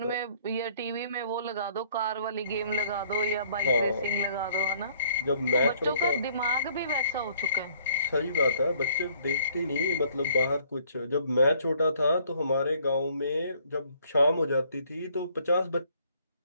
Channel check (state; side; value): inverted; both; correlation -0.60